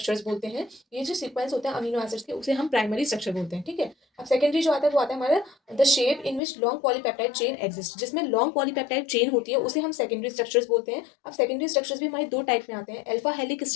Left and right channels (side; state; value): right; drops out; at 6.4 s